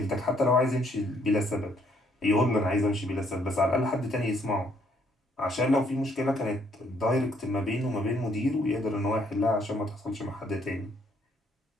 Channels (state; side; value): normal; both; correlation 0.68